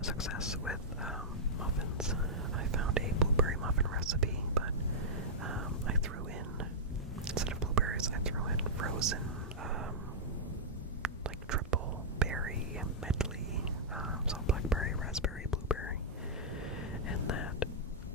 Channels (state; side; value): normal; both; correlation -0.11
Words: success with muffins. I found a blueberry muffin recipe, but I threw in, instead of blueberries, I threw in frozen, like triple berry medley, so blackberry, raspberry, blueberry, and that